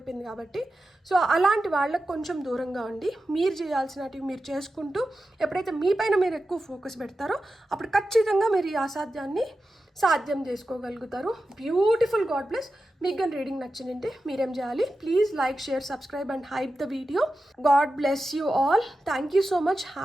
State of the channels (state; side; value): normal; both; correlation 0.92